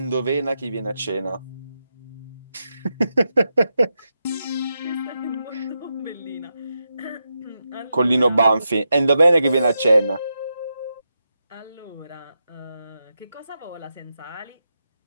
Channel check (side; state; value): both; inverted; correlation -0.87